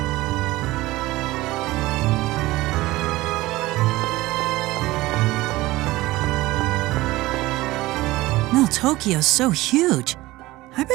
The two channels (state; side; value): quieter; left; 18.7 dB